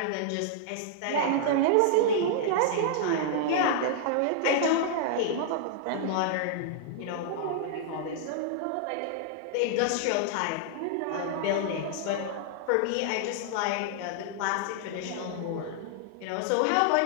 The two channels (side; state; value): both; different; correlation -0.01